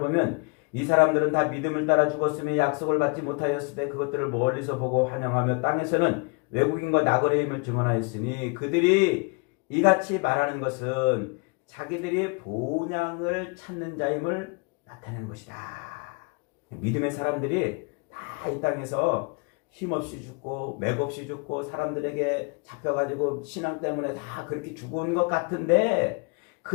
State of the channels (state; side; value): quieter; right; 32.1 dB